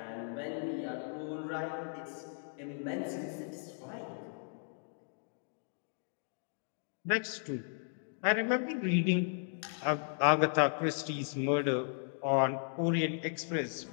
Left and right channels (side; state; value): right; silent; digital silence